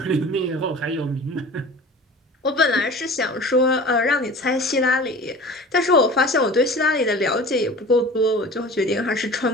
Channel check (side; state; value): both; normal; correlation 0.40